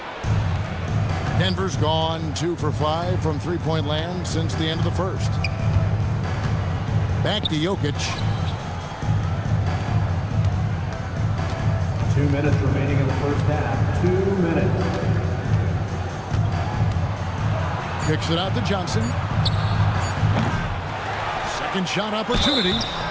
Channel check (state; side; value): identical; both; correlation 1.00